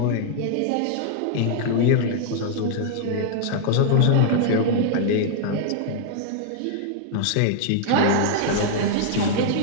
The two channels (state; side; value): different; both; correlation -0.01